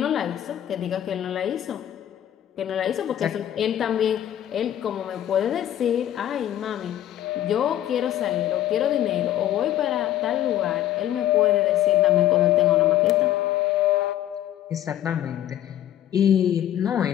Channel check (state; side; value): quieter; right; 12.0 dB